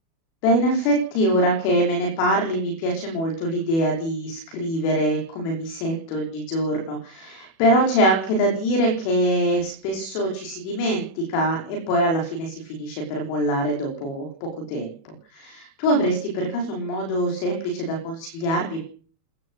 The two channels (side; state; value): right; late; 37 ms